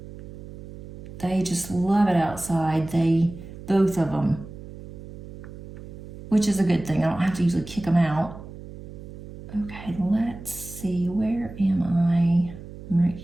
They just love it outside. Both of them, which is a good thing. I don't have to usually kick them out. Okay, let's see. Where am I? I'm right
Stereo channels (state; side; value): noise; right; hum, 14 dB below the sound